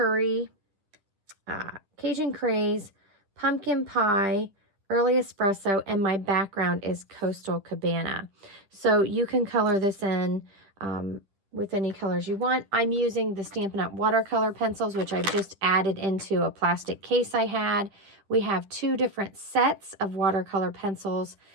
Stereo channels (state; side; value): late; left; 10 ms